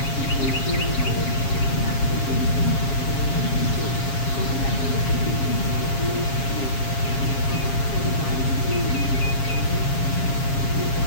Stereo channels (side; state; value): right; late; 7.4 ms